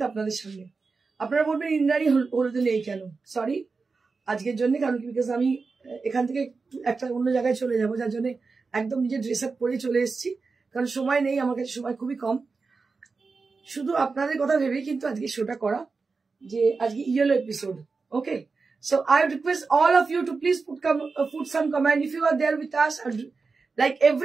আপনাদের সামনে। আপনারা বলবেন ইন্দ্রাণী হলুদে নেই কেন? সরি, আজকের জন্য, কারণ কি বিকজ আমি এখান থেকে একটা অন্য জায়গায় চলে যাবো, যার জন্য একদম নিজের ড্রেস আপ করে চলে এসেছি, কারণ সময় নেই আমার কাছে, সময় খুবই কম। শুধু আপনাদের কথা ভেবেই কিন্তু আজকে শোটা করা, যে আজকে yellow episode. Okay, so I request all of you to please put some comment if you are there with us. Like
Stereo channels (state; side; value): quieter; left; 4.4 dB